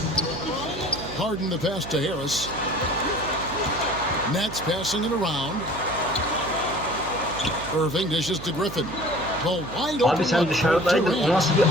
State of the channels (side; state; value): right; noise; hum, 12 dB below the sound